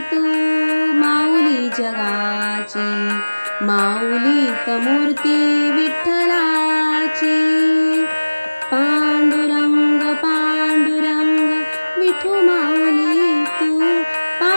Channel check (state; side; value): inverted; both; correlation -1.00